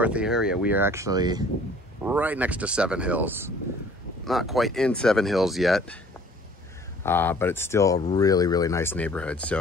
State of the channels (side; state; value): both; normal; correlation 0.53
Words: the area, we are actually right next to Seven Hills. Not quite in Seven Hills yet, but it's still a really, really nice neighborhood.